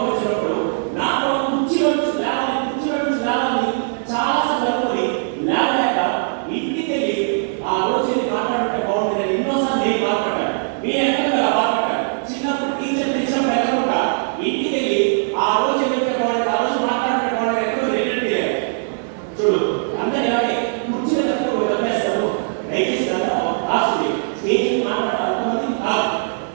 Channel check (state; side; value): silent; left; 65 dB below the other